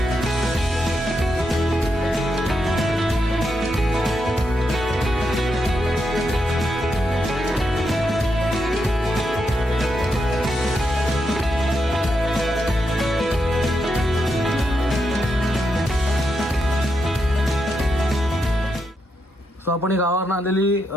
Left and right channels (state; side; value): normal; both; correlation 0.83